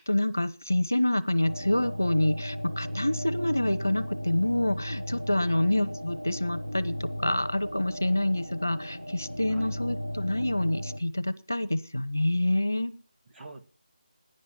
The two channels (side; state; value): both; inverted; correlation -0.99